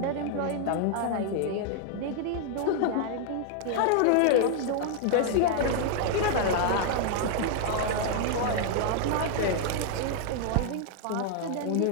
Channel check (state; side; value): different; both; correlation 0.00